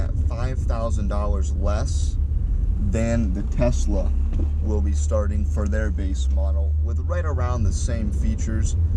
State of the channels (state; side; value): identical; both; correlation 1.00